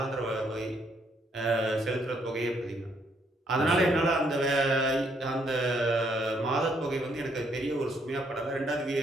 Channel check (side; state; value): both; normal; correlation 0.71